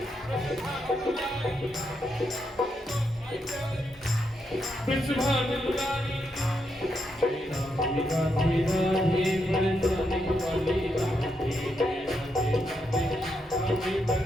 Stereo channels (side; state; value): both; normal; correlation 0.81